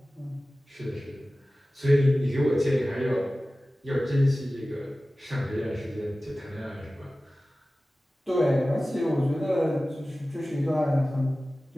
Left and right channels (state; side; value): normal; both; correlation 0.96